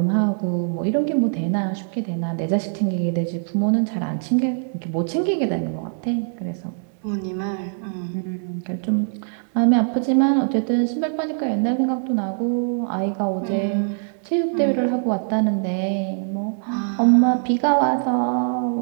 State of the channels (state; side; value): silent; left; 64 dB below the other